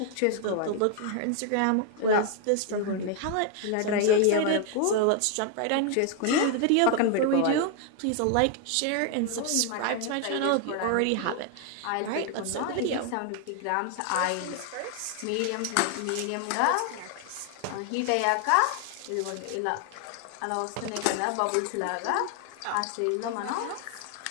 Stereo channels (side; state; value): both; different; correlation 0.00